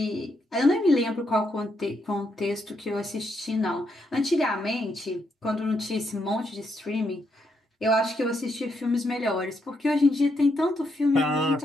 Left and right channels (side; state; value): both; normal; correlation 0.79